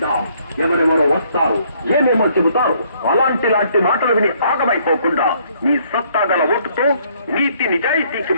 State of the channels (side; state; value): both; inverted; correlation -0.66